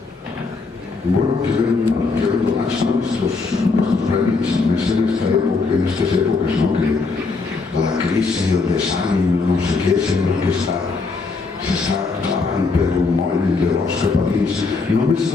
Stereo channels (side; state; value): right; quieter; 4.2 dB